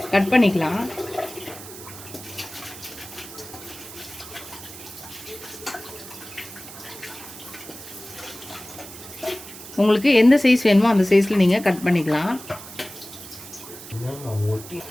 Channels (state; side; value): noise; right; hiss, 14 dB below the sound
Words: கட் பண்ணிக்கலாம். உங்களுக்கு எந்த சைஸ் வேணுமோ அந்த சைஸில் நீங்கள் கட் பண்ணிக்கலாம்.